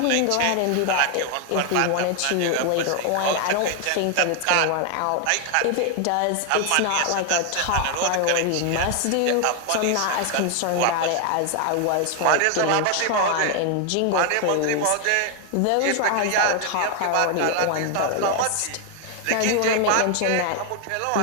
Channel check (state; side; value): different; both; correlation 0.00